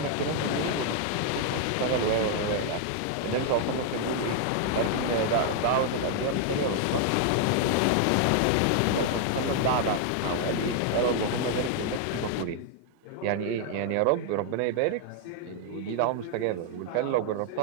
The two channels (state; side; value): different; both; correlation 0.00